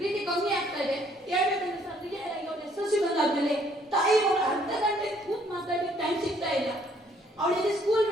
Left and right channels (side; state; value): both; normal; correlation 0.64